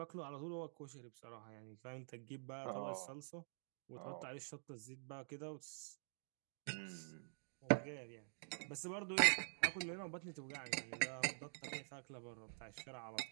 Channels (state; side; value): silent; left; digital silence